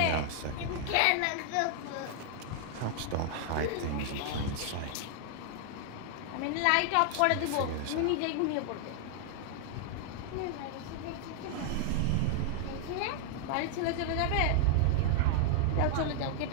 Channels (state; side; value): different; both; correlation 0.00